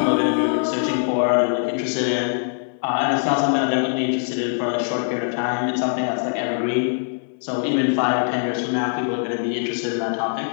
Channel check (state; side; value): silent; right; digital silence